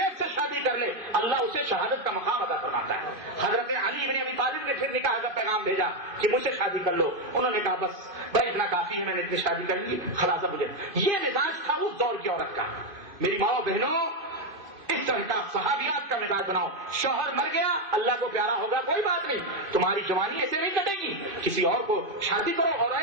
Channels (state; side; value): late; left; 2.5 ms